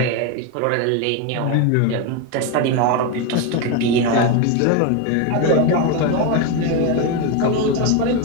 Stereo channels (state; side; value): different; both; correlation 0.02